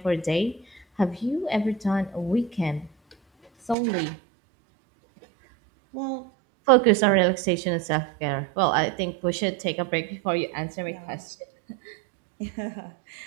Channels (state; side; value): drops out; left; at 3.8 s